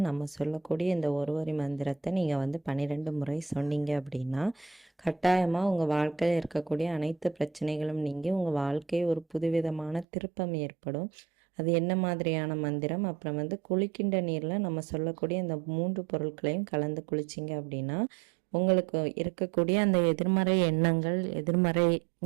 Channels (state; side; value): drops out; left; at 10.1 s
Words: நம்ம சொல்லக்கூடிய இந்த ஒரு வரி மந்திரத்தை நீங்கள் 12 முறை சொன்னீங்க அப்படின்னா கட்டாயமாக உங்கள் வாழ்க்கையில் இருக்கக்கூடிய அனைத்து பிரச்சனைகளும் நீங்கி உங்கள் வாழ்க்கை ஒரு புதுவிதமான திருப்பம் ஏற்படும். அது என்ன மாதிரியான மந்திரம், அப்புறம் குளிக்கின்ற நீரில் நம்ம சொல்லக்கூடிய இந்த 3 பொருட்களையும் கலந்து குளிச்சிங்க அப்படின்னா உங்களுக்கு இருக்கக்கூடிய அந்த எதிர்மறை எண்ணங்கள், எதிர்மறை